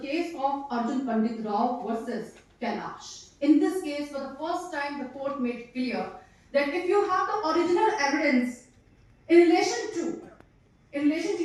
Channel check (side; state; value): both; identical; correlation 1.00